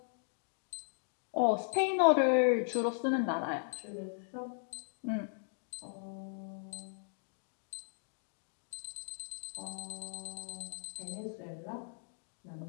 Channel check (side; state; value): right; silent; digital silence